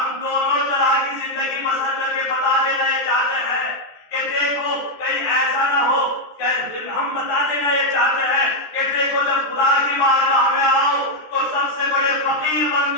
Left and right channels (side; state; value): right; late; 13 ms